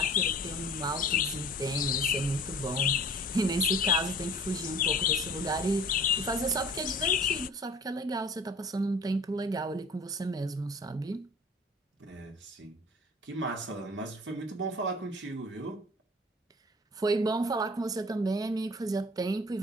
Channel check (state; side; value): normal; both; correlation 0.46